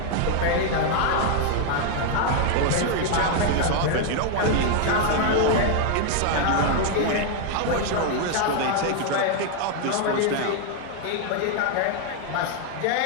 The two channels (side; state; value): both; different; correlation 0.00